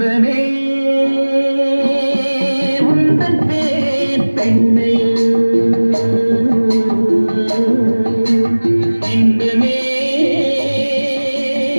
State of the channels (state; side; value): inverted; both; correlation -1.00